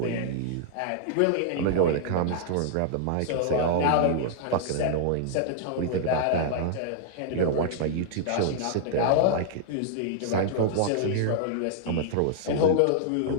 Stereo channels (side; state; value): both; different; correlation -0.01